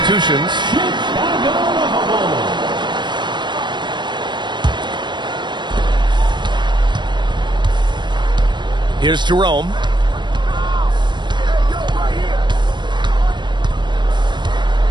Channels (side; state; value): left; late; 0.22 ms